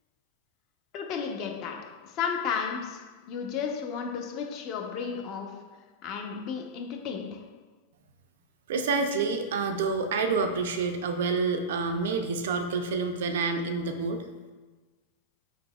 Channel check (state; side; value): normal; both; correlation -0.12